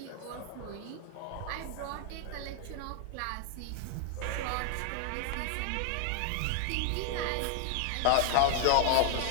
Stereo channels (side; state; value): both; different; correlation 0.00